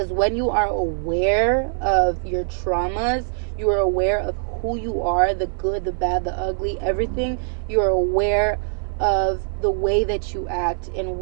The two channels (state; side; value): silent; left; 64 dB below the other